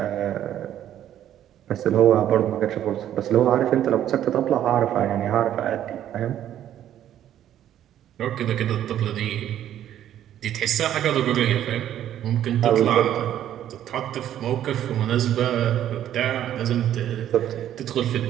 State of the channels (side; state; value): left; quieter; 11.3 dB